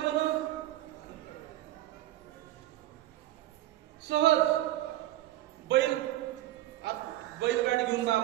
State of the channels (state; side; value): quieter; left; 14.7 dB